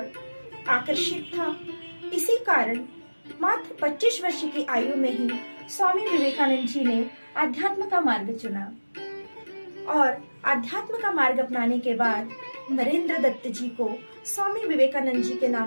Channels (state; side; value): inverted; both; correlation -1.00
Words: आकर्षित था। इसी कारण मात्र 25 वर्ष की आयु में ही स्वामी विवेकानंद जी ने आध्यात्म का मार्ग चुना और आध्यात्म का मार्ग अपनाने के बाद नरेंद्र दत्त जी को स्वामी विवेकानंद जी के